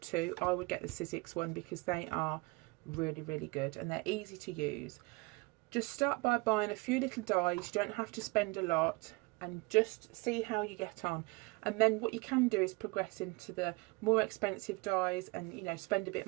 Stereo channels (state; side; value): quieter; left; 25.8 dB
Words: to, I would get the sizzix one because they are really, really good and they're easy to use. Just start by buying a few little dies. You don't have to spend a lot, and just see how you get on. And then what you can do is progress into the more expensive dies and, you know, spend a bit